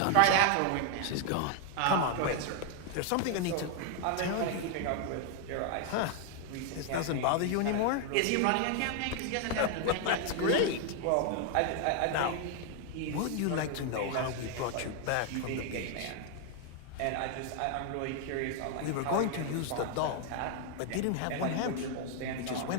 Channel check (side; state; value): both; different; correlation 0.00